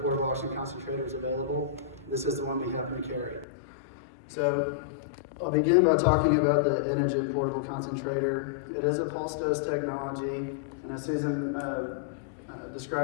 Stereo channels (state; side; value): drops out; right; at 3.5 s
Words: portable oxygen concentrators available. This is the one we happen to carry. So I'll begin by talking about the Inogen portable concentrator. It is a pulse dose technology, and as Susan